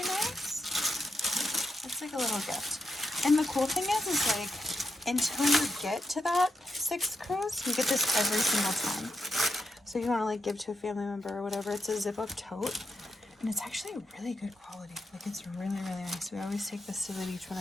nice. It's like a little gift. And the cool thing is like, until you get to that 6th cruise, you get this every single time. So you want to like give to a family member or whatever. It's a zip-up tote. And it's actually really good quality. Like, it's really, really nice. We always take this to the beach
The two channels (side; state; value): both; normal; correlation 0.84